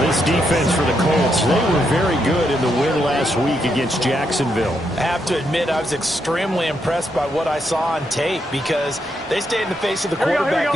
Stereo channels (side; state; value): both; normal; correlation 0.80